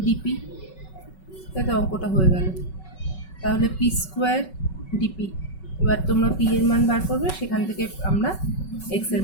ডিপি, তাই তো, অঙ্কটা হয়ে গেল। তাহলে পি স্কোয়ার ডিপি। এবার তোমরা পি এর মান বার করবে, সেখান থেকে আমরা এক্স এর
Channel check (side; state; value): right; late; 5.3 ms